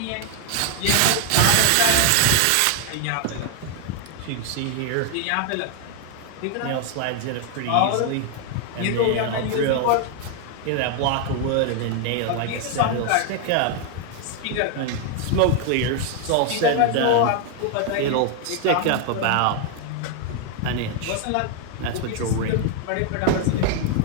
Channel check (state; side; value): different; both; correlation 0.00